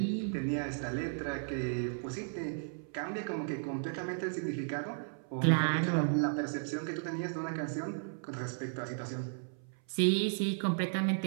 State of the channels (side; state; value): left; silent; 55 dB below the other